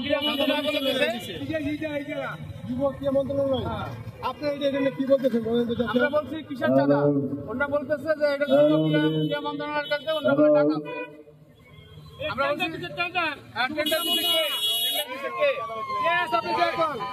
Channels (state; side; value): identical; both; correlation 1.00